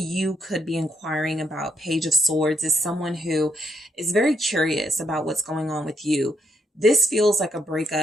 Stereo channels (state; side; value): normal; both; correlation 0.75